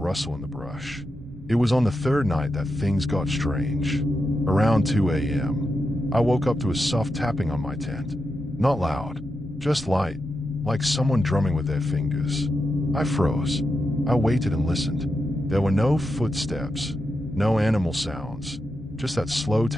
in the brush. It was on the third night that things got strange. Around 2 a.m., I woke up to a soft tapping on my tent. Not loud, just light, like someone drumming with their fingers. I froze. I waited and listened. There were no footsteps, no animal sounds, just that slow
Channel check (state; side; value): normal; both; correlation 0.87